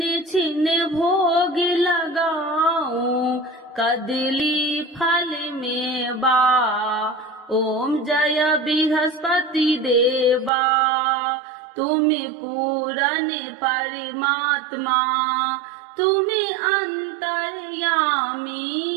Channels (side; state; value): left; drops out; at 10.5 s